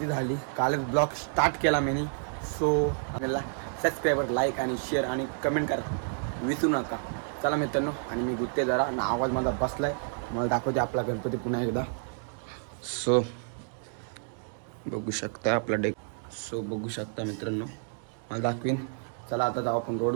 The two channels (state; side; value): silent; left; 58 dB below the other